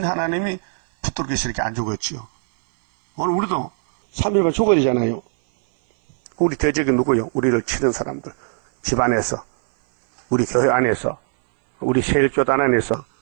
하나님이 붙들기서 이렇게 안 죽었지요. 오늘 우리도 3일만 죽어야 되잖아요. 우리 대적이 누구요? 우리를 치는 사람들. 집안에서, 우리 교회 안에서, 우리 세일교단 안에서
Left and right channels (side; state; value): left; silent; 59 dB below the other